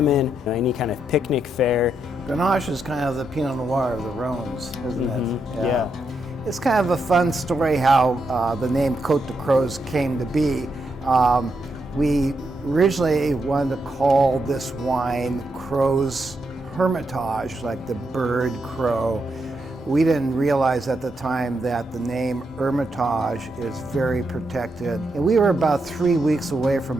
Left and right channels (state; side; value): normal; both; correlation 0.82